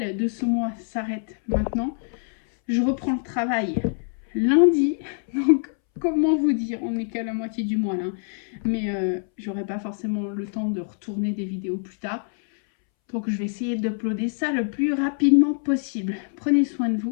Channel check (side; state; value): right; silent; 62 dB below the other